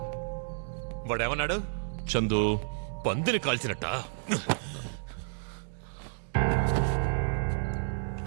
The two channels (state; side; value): silent; left; digital silence